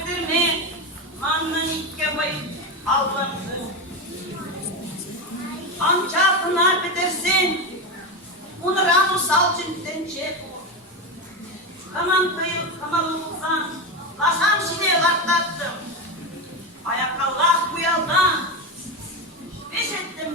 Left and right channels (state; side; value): normal; both; correlation 0.15